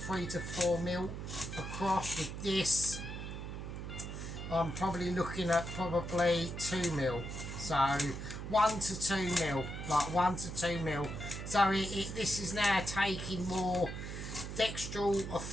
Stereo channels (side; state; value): right; noise; hum, 7 dB below the sound